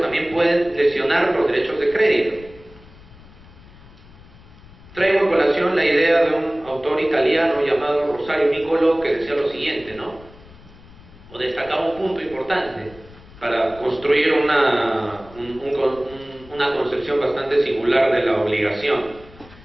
también pueden lesionar los derechos de crédito. Traigo a colación la idea de un autor italiano llamado Rosario Nicolò, que decía lo siguiente, ¿no? O destacaba un punto importante para construir una concepción bastante singular de la obligación.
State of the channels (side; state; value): left; noise; rumble, 22 dB below the sound